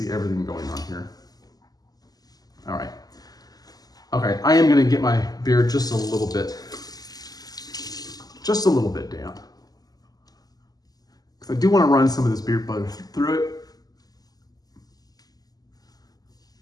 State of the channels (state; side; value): late; right; 0.18 ms